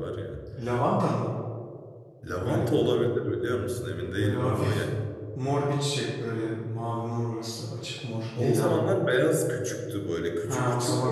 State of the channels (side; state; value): both; identical; correlation 1.00